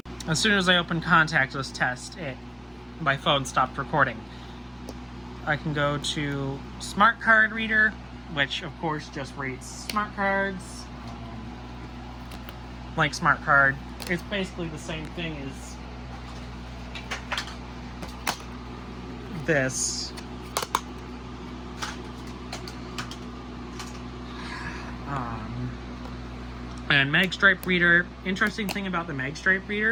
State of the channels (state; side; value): identical; both; correlation 1.00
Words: As soon as I open contact list test, my phone stopped recording. I can go to smart card reader, which of course just reads smart cards. Like smart card, it's basically the same thing as this. And Magstripe reader. Interesting thing about the Magstripe